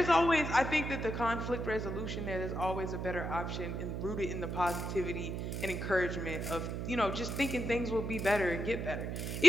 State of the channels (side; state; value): right; noise; hum, 3 dB below the sound